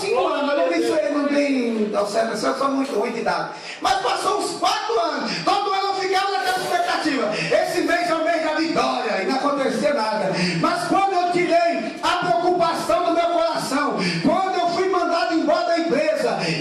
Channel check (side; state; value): both; identical; correlation 1.00